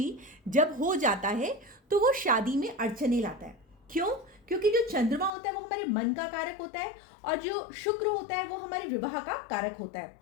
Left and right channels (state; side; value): drops out; right; at 5.3 s